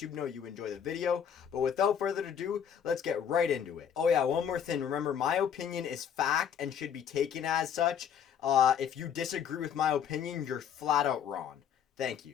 know you enjoy the video. But without further ado, let's get right into it. Oh yeah, one more thing. Remember, my opinion is fact and should be taken as such. If you disagree with my opinion, you're flat out wrong. Thank you.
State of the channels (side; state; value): right; quieter; 8.3 dB